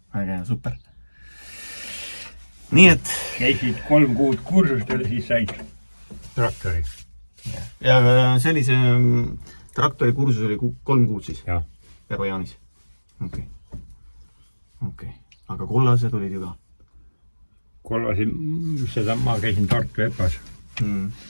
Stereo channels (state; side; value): inverted; both; correlation -1.00